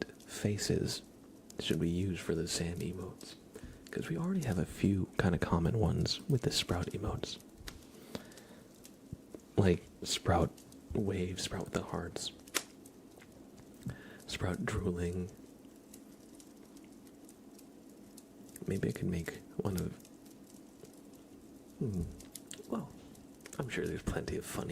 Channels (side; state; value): both; identical; correlation 1.00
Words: faces should we use for the Sam emotes? Because we already have a few kind of common ones with the Sprout emotes. Like Sprout wave, Sprout with the hearts, Sprout drooling. Maybe I could make one of... Well, I'm sure there's plenty of fun